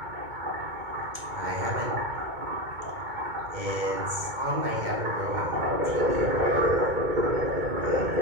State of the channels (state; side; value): late; left; 2.2 ms